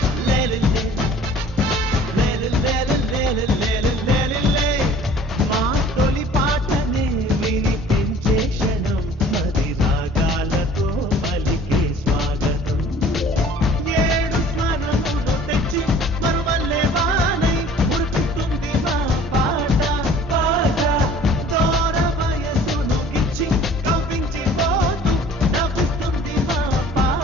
లేలిలే లేలిలే మా తొలి పాటనే వినిపించే క్షణం అది రాగాలతో పలికే స్వాగతం. ఏడు స్మరణులు తెచ్చి మరువల్లే వానై ఉరుకుతుంది మా పాట పాట. దూర వయసును గిచ్చి కవ్వించిపోతూ నవ్వుతుంది మా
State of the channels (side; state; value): both; normal; correlation 0.50